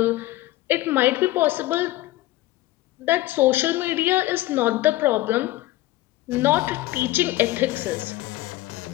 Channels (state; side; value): quieter; right; 17.0 dB